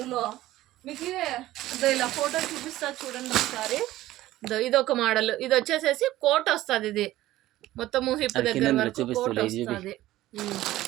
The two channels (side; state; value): left; quieter; 15.7 dB